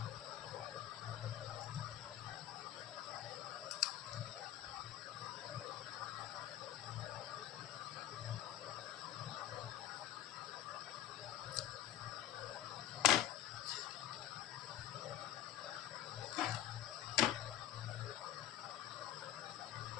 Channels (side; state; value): right; quieter; 12.1 dB